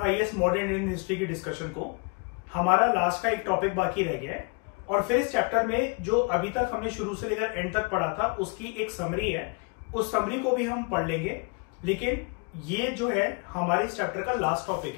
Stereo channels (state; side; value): quieter; right; 34.2 dB